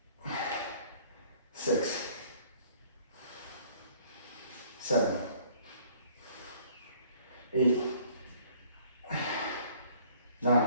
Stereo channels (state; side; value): inverted; both; correlation -0.56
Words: 6, 7, 8,